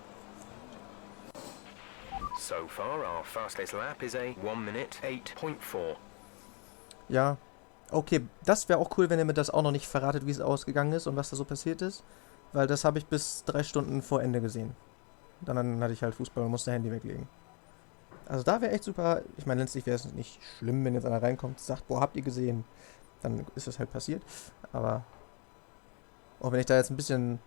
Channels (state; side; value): quieter; right; 34.4 dB